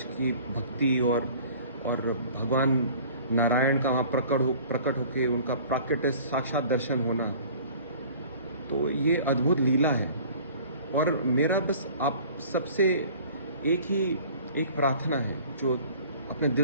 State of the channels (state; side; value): inverted; both; correlation -0.48